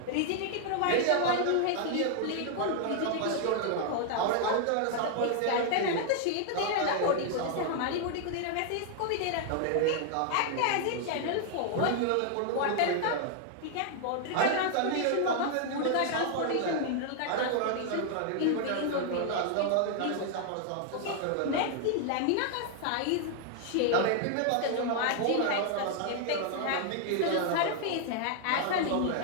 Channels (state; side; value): different; both; correlation 0.00